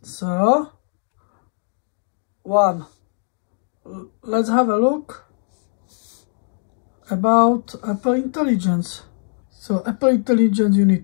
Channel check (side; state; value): right; silent; digital silence